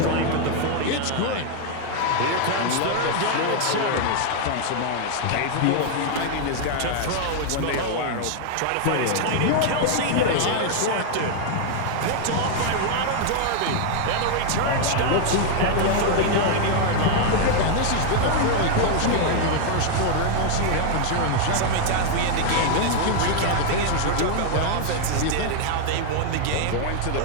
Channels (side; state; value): both; different; correlation 0.00